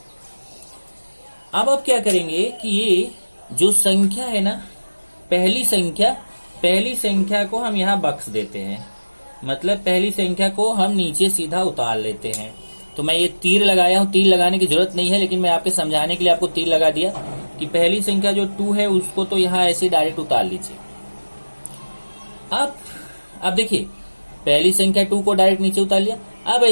अब क्या करेंगे कि ये जो संख्या है ना, पहली संख्या को हम यहाँ बख्श देते हैं, मतलब पहली संख्या को हम नीचे सीधा उतार लेते हैं। तो मैं ये तीर लगाया हूं, तीर लगाने की जरूरत नहीं है लेकिन मैं आपके समझाने के लिए आपको तीर लगा दिया कि पहली संख्या जो 2 है उसको तो यहाँ ऐसे डायरेक्ट उतार लीजिए। अब देखिए पहली संख्या 2 को डायरेक्ट नीचे उतार लिया। अब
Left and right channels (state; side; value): inverted; both; correlation -1.00